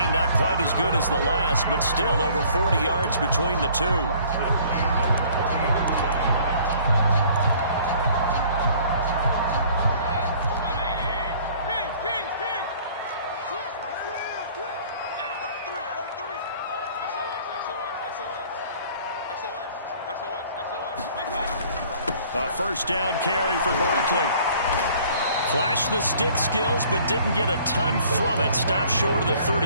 not quite as good as the last, but still over 40 yards between the two. A first down carry for Barkley. Flashed the stick skills, but didn't get a ton from it. Stopped short of the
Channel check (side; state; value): both; inverted; correlation -0.54